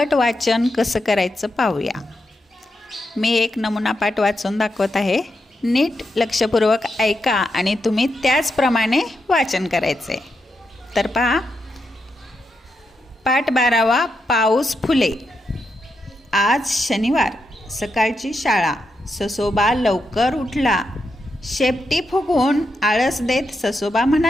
वाचन कसं करायचं पाहूया। मी एक नमुना पाठ वाचून दाखवत आहे। नीट लक्षपूर्वक ऐका आणि तुम्ही त्याचप्रमाणे वाचन करायचे। तर पहा, पाठ 12वा, पाऊस फुले। आज शनिवार, सकाळची शाळा। ससोबा लवकर उठला। शेपटी फुगवून आळस देत ससोबा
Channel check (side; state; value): both; normal; correlation 0.85